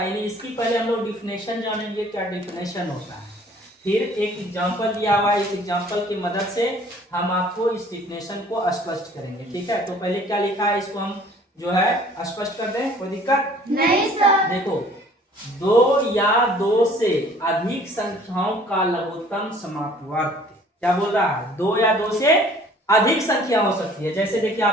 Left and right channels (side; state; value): both; normal; correlation 0.53